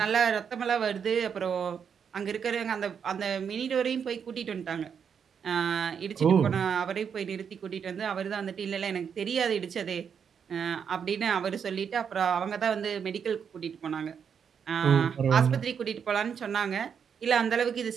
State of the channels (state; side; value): quieter; left; 7.2 dB